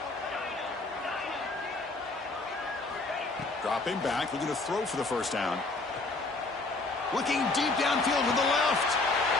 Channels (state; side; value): quieter; right; 3.3 dB